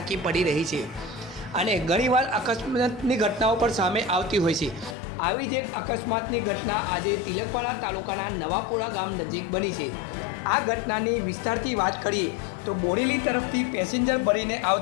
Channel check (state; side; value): drops out; right; at 5.0 s